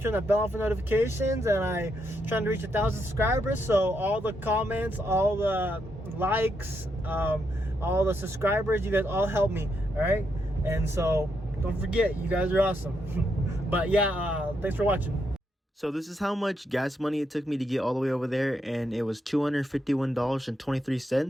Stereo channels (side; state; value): both; normal; correlation 0.80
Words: that bell on for notifications. And I'm trying to reach 1,000 subscribers, so all the comments, all the likes, all the subscribers, you guys all help me. All right, and so don't forget, you guys are awesome. But yeah, thanks for watching. So this is how much gas money it took me to get all the way over there, and it was